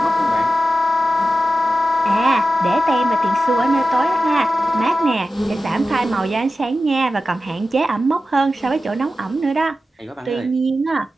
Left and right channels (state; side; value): normal; both; correlation 0.93